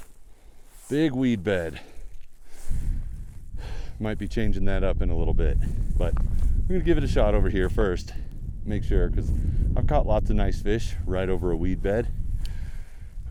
Big weed bed. Might be changing that up in a little bit, but I'm gonna give it a shot over here first. Make sure, because I've caught lots of nice fish right over a weed bed.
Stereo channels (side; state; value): both; identical; correlation 1.00